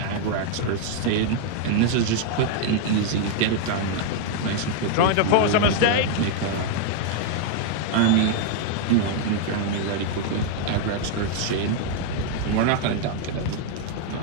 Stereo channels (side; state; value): both; different; correlation 0.00